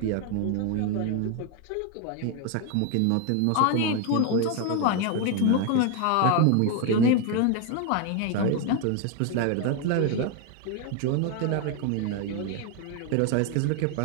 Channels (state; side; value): different; both; correlation 0.01